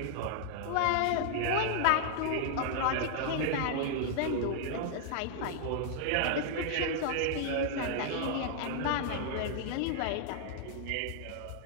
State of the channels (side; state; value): both; different; correlation -0.01